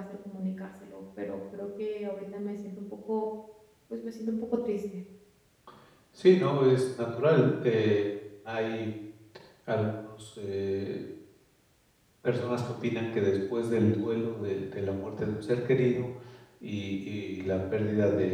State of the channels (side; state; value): both; identical; correlation 1.00